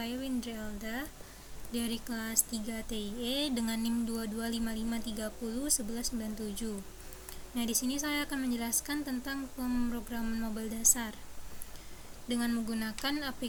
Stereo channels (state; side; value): identical; both; correlation 1.00